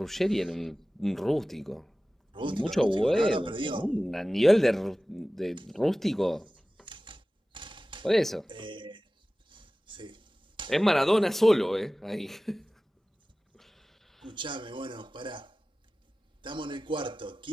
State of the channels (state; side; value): normal; both; correlation 0.97